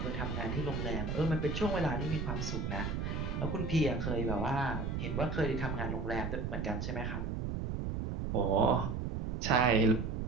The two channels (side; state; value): right; noise; rumble, 2 dB below the sound